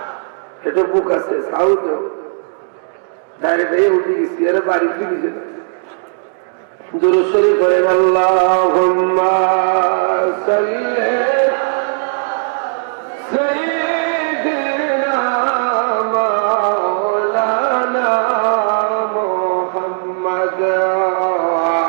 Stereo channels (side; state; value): left; silent; digital silence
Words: এটা বুক আছে সাউথে, ডাইরেক্ট এই উঠে গেছি, এরা বাড়ি ফিরে গেছে। দুরূদ শরীফ পড়েন, আল্লাহুম্মা সাল্লি সাইয়্যিদিনা মাওলানা মুহাম্মদ ওয়া